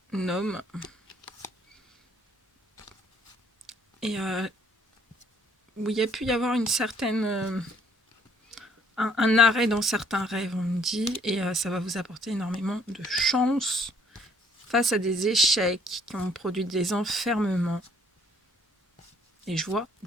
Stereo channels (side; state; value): both; normal; correlation 0.61